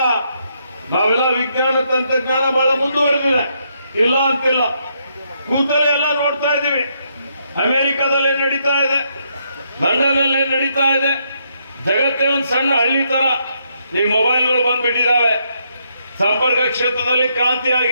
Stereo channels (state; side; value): inverted; both; correlation -0.76